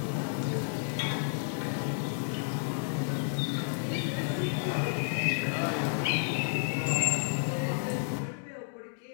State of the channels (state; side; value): silent; right; digital silence